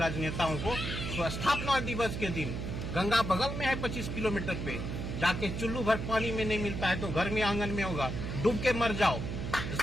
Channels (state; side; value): noise; right; hum, 4 dB below the sound